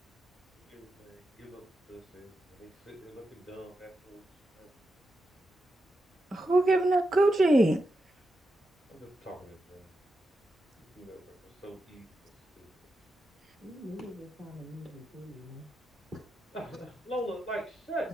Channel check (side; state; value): both; normal; correlation 0.87